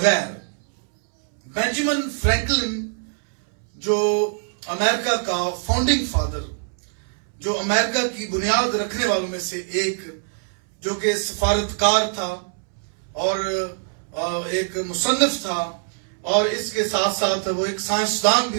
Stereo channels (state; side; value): silent; left; 63 dB below the other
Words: بینجامن فرینکلن جو امریکہ کا فاؤنڈنگ فادر، جو امریکہ کی بنیاد رکھنے والوں میں سے ایک، جو کہ سفارتکار تھا اور ایک مصنف تھا، اور اس کے ساتھ ساتھ وہ ایک سائنسدان